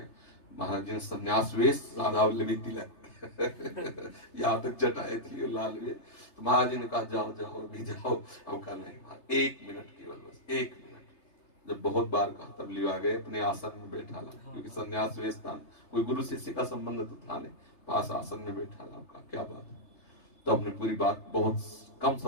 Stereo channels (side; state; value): right; late; 3.3 ms